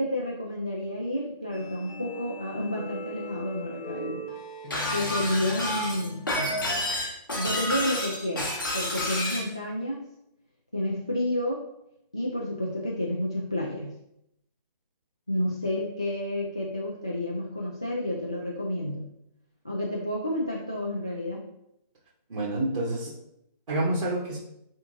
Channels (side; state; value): both; inverted; correlation -0.58